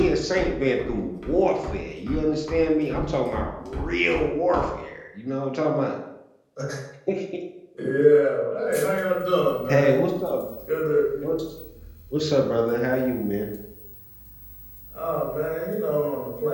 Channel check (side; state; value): both; identical; correlation 1.00